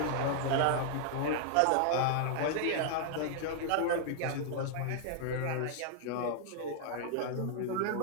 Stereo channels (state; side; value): different; both; correlation 0.00